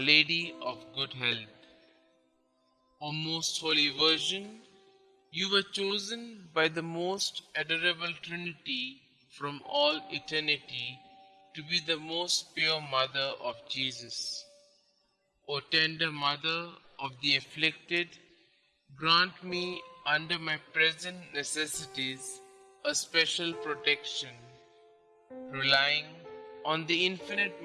Lady of Good Health. O Most Holy Virgin, you were chosen by the most adorable Trinity from all eternity to be the most pure Mother of Jesus. O tender Mother of the afflicted, grant me under my present necessities a special protection, relying on the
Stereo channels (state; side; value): identical; both; correlation 1.00